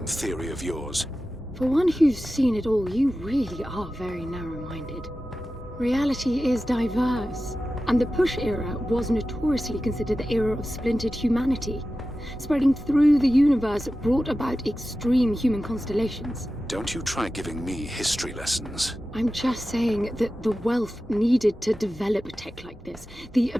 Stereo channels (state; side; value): normal; both; correlation 0.94